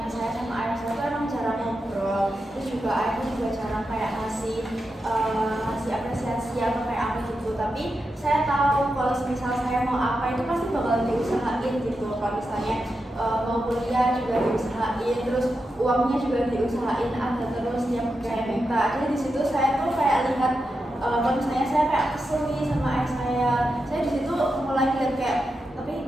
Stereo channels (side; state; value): both; normal; correlation 0.88